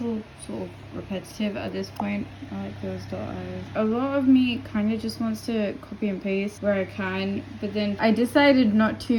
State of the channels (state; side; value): identical; both; correlation 1.00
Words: sort of repetitive at this point. I like those dot eyes. A lot of me kind of just wants to copy and paste where I can, but then I decided not